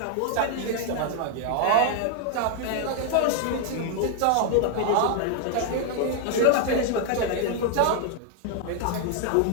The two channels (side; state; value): both; different; correlation 0.00